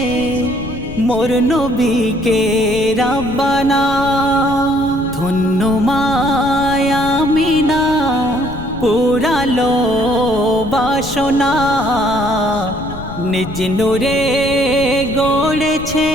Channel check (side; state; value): left; noise; rumble, 13 dB below the sound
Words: মোর নবীকে রাব্বানা ধন্য মায়া মিনা পুরালো বাসনা নিজ নূরে গড়েছে